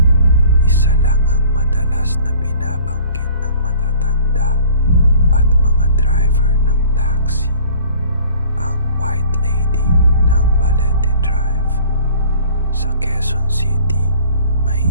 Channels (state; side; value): inverted; both; correlation -0.51